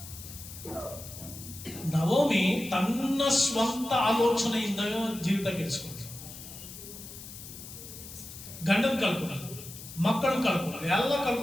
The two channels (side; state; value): left; noise; hiss, 13 dB below the sound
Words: ನವೋಮಿ ತನ್ನ ಸ್ವಂತ ಆಲೋಚನೆಯಿಂದ ಜೀವಿತ ಕೆಡಿಸ್ಕೊಂಡ್ರು. ಗಂಡನ್ ಕಳ್ಕೊಂಡ್ರು, ಮಕ್ಕಳನ್ನ ಕಳ್ಕೊಂಡ್ರು, ಎಲ್ಲ